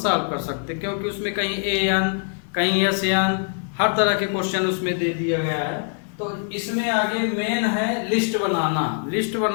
कर सकते हैं, क्योंकि उसमें कहीं AN कहीं SN हर तरह के क्वेश्चन उसमें दे दिया गया है। तो इसमें आगे मेन है लिस्ट बनाना। लिस्ट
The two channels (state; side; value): silent; right; 57 dB below the other